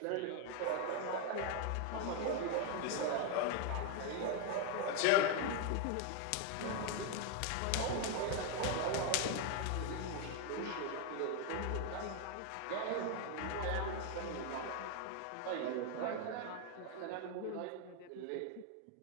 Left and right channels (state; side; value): different; both; correlation 0.01